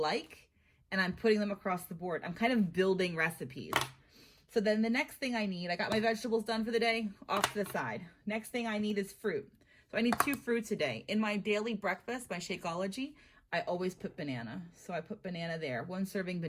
and I'm putting them across the board. I'm kind of building recipes. So then the next thing I need, I got my vegetables done for the day, off to the side. Next thing I need is fruit. So I need 2 fruits a day. In my daily breakfast, my Shakeology, I always put banana. So I put banana there, 1 serving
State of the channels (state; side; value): identical; both; correlation 1.00